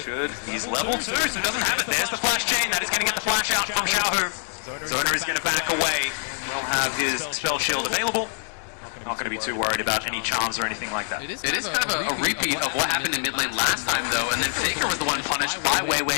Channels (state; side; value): silent; right; digital silence